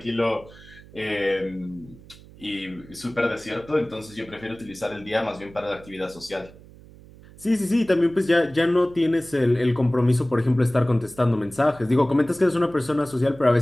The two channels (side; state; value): right; noise; hum, 21 dB below the sound